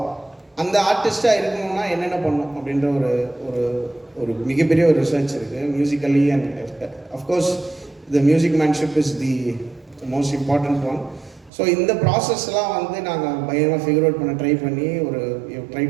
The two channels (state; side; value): drops out; left; at 11.5 s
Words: அந்த ஆர்டிஸ்ட்டாக இருக்கணும்னா என்னென்ன பண்ணணும் அப்படின்ற ஒரு மிகப்பெரிய ஒரு ரிசர்ச் இருக்குது musically. And of course the musicianship is the most important one. So இந்த ப்ராசஸ்லாம் வந்து நாங்கள் பயங்கரமாக ஃபிகர் அவுட் பண்ண ட்ரை பண்ணி try